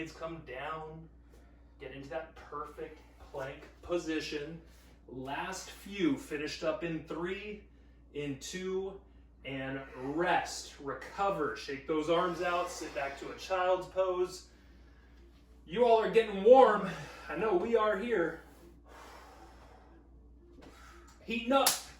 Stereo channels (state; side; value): identical; both; correlation 1.00